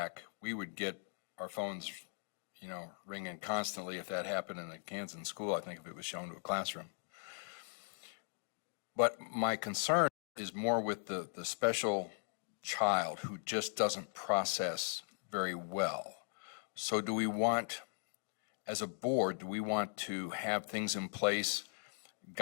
We would get our phones, you know, ringing constantly if that happened in a Kansas school, I think, if it was shown to a classroom. But my concern is more with the special child who just doesn't process very well. So do we want, as a board, do we want to have things in place,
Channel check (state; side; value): silent; right; 52 dB below the other